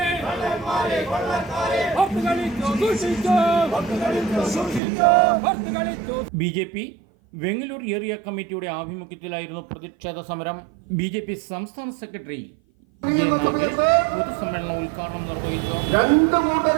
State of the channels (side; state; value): left; drops out; at 4.8 s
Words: കള്ളന്മാരെ കൊള്ളക്കാരെ. ഒത്തുകളിച്ചോ സൂക്ഷിച്ചോ, ഒത്തുകളിച്ചോ സൂക്ഷിച്ചോ, ഒത്തുകളിച്ചോ. BJP വെങ്ങലൂർ ഏരിയ കമ്മിറ്റിയുടെ ആഭിമുഖ്യത്തിലായിരുന്നു പ്രതിഷേധ സമരം. BJP സംസ്ഥാന സെക്രട്ടറി A. നാഗേഷ് പൊതുസമ്മേളനം ഉദ്ഘാടനം നിർവഹിച്ചു. രണ്ടു